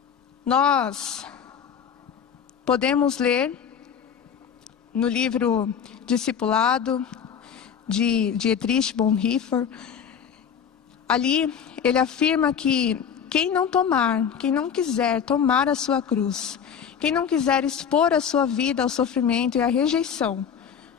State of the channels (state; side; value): quieter; right; 7.7 dB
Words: Nós podemos ler no livro Discipulado, de Dietrich Bonhoeffer. Ali ele afirma que quem não quiser tomar a sua cruz, quem não quiser expor a sua vida ao sofrimento e à rejeição